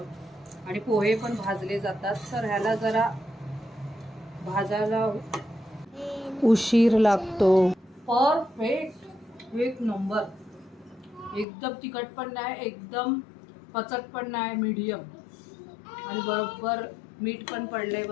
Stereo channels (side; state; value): right; drops out; at 11.5 s